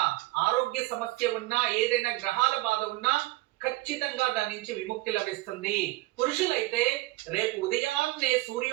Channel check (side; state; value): left; quieter; 19.7 dB